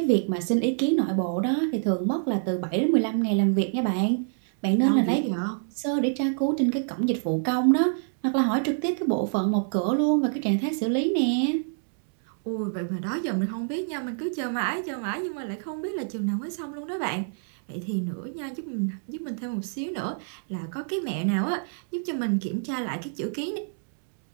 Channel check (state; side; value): silent; left; digital silence